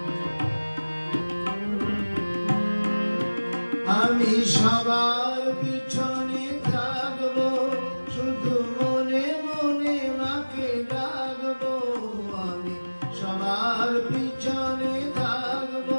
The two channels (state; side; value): inverted; both; correlation -1.00